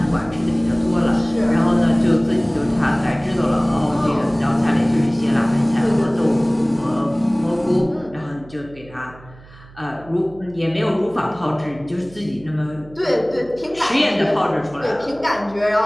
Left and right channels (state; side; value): noise; right; hum, 22 dB below the sound